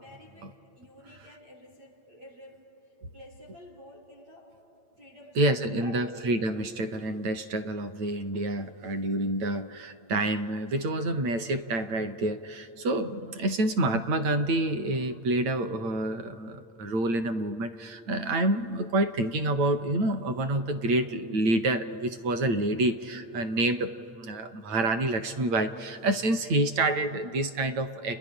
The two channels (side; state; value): left; late; 8.8 ms